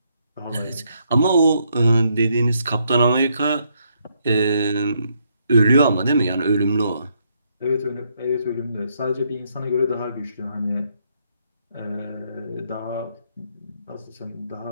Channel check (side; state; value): both; inverted; correlation -0.74